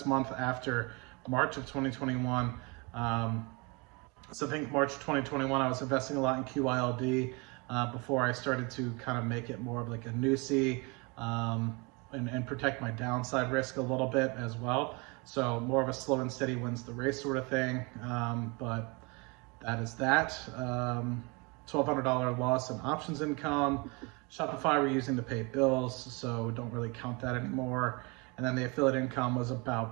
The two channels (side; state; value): left; quieter; 29.1 dB